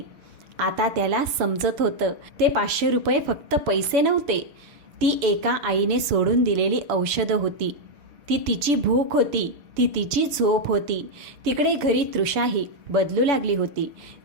आता त्याला समजत होतं ते 500 रुपये फक्त पैसे नव्हते. ती एका आईने सोडून दिलेली औषधं होती. ती तिची भूक होती. ती तिची झोप होती. तिकडे घरी तृषाही बदलू लागली होती.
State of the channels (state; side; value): late; left; 7.0 ms